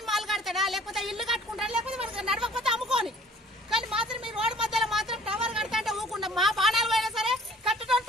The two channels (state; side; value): normal; both; correlation 0.53